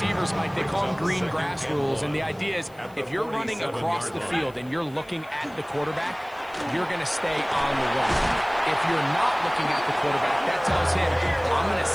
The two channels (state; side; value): noise; left; hiss, 28 dB below the sound